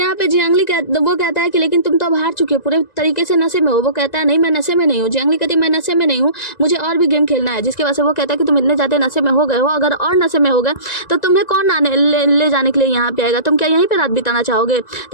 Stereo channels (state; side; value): late; right; 1.9 ms